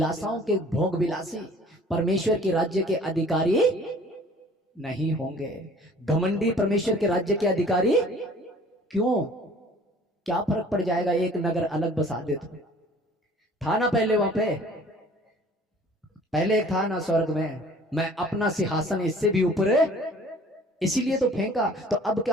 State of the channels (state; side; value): normal; both; correlation 0.51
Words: के भोग विलासी परमेश्वर के राज्य के अधिकारी नहीं होंगे। घमंडी परमेश्वर के राज्य के अधिकारी क्यों? क्या फर्क पड़ जाएगा एक नगर अलग बसा दे तो? था ना पहले वहां पे, पहले एक था ना स्वर्ग में, मैं अपना सिंहासन इससे भी ऊपर है, इसीलिए तो फेंका। तो अब